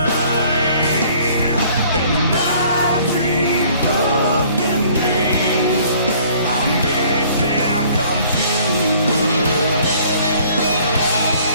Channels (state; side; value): inverted; both; correlation -0.57